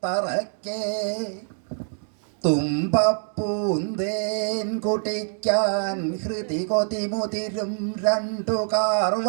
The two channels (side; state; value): left; silent; digital silence